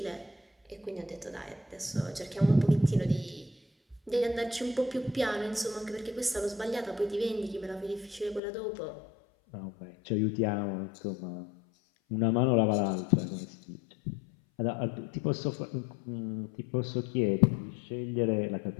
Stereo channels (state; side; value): drops out; right; at 8.4 s